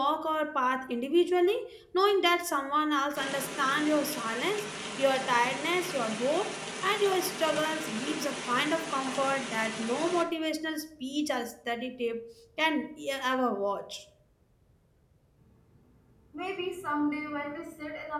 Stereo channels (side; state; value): both; identical; correlation 1.00